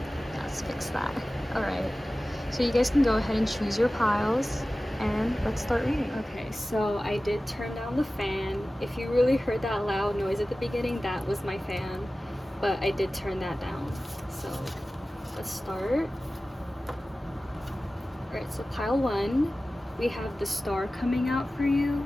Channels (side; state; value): both; normal; correlation 0.96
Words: Let's fix that. Alright, so you guys can go ahead and choose your piles, and let's start reading. Okay, so I did turn down the fan. If you really heard that loud noise at the beginning, that was my fan. But I did turn that down. So let's start. Alright, so pile 1, we have the star coming out for